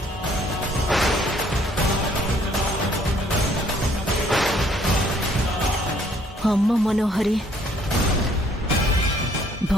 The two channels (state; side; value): normal; both; correlation 0.63